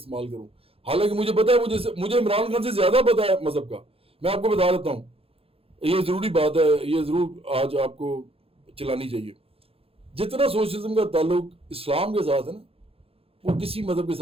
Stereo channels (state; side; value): late; left; 0.28 ms